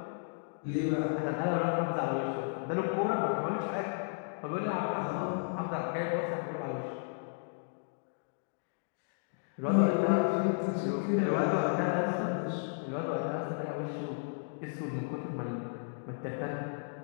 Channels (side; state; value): right; silent; digital silence